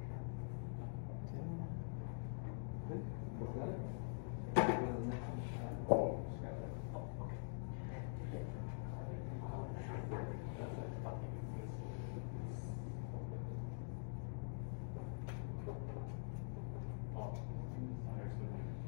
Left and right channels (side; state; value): right; silent; digital silence